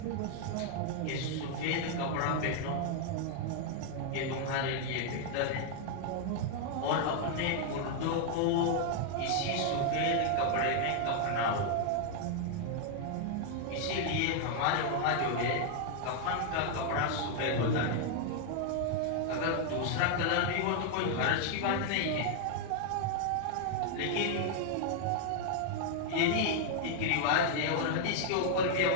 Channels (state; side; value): different; both; correlation 0.00